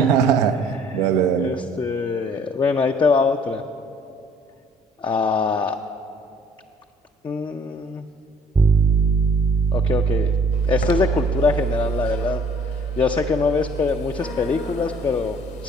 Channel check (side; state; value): both; normal; correlation 0.57